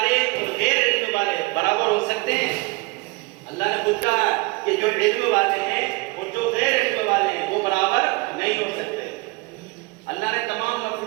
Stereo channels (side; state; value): left; quieter; 25.4 dB